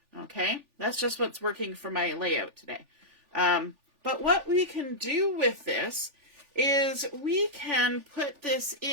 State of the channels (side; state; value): left; late; 3.4 ms